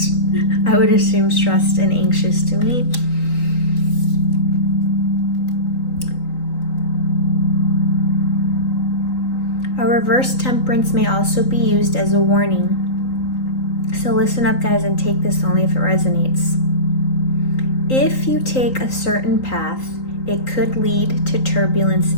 I would assume stressed and anxious to me. A reverse Temperance may also be used as a warning. So listen up, guys, and take this only if it resonates. If you take a certain path, it could lead to turbulence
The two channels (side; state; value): right; late; 3.9 ms